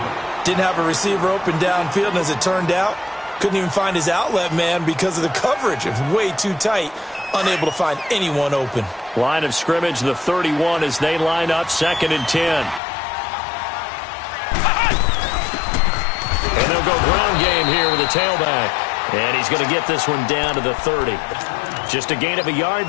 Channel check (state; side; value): drops out; right; at 12.8 s